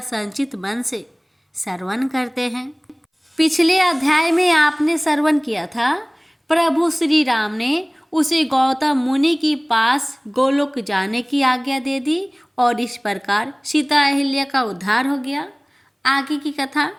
मन से श्रवण करते हैं। पिछले अध्याय में आपने श्रवण किया था, प्रभु श्री राम ने उसे गौतम मुनि के पास गोलोक जाने की आज्ञा दे दी और इस प्रकार सीता अहिल्या का उद्धार हो गया। आगे की कथा,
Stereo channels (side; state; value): both; identical; correlation 1.00